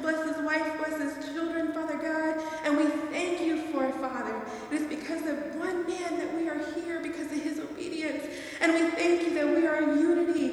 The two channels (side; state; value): both; identical; correlation 1.00